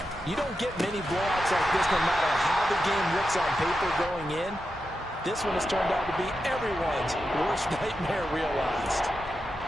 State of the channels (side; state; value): both; normal; correlation 0.89